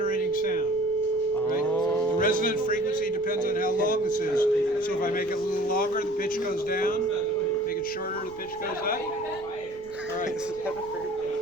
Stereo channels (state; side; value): noise; left; rumble, 22 dB below the sound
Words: sound. Right? The resonant frequency depends on how long this is. So if I make it a little longer, the pitch goes down. Make it shorter, the pitch goes up. All right.